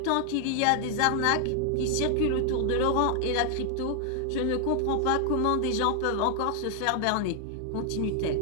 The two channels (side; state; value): both; different; correlation 0.00